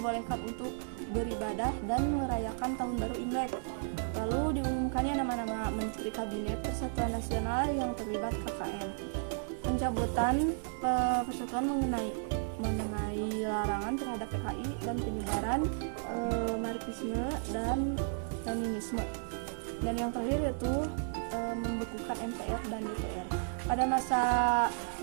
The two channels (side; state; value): left; silent; digital silence